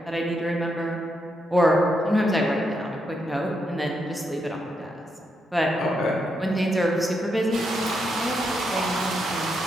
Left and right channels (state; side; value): normal; both; correlation 0.81